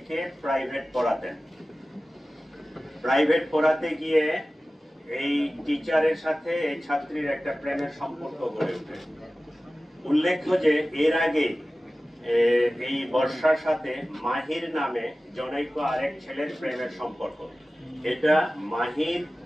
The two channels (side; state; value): both; normal; correlation 0.96